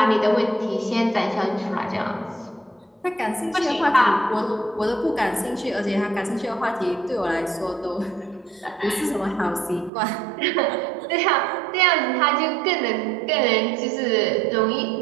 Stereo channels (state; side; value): drops out; left; at 9.9 s